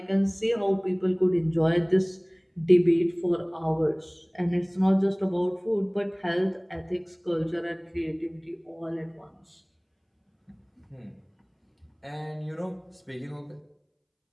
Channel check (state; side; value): identical; both; correlation 1.00